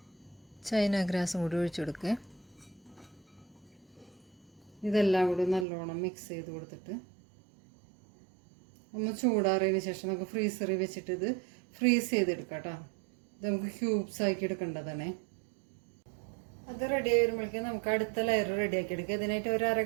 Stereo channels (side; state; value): left; drops out; at 5.7 s